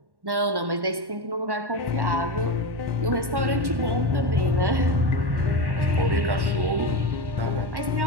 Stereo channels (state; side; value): late; left; 1.1 ms